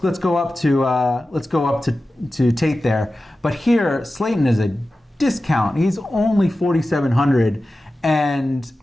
go up to Tate there. But here, Slayton is a discount. He's only 4,700, and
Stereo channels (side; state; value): both; normal; correlation 0.94